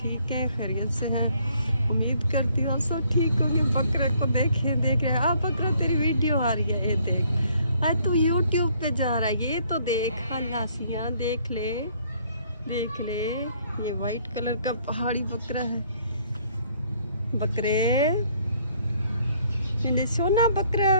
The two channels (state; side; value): inverted; both; correlation -0.64